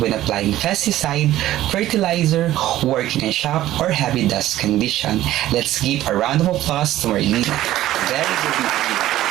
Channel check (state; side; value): quieter; left; 14.2 dB